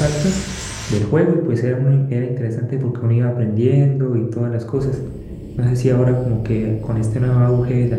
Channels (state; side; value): identical; both; correlation 1.00